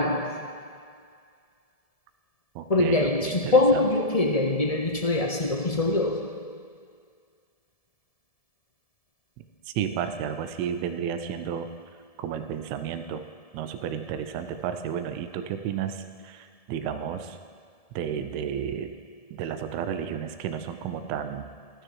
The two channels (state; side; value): late; right; 1.7 ms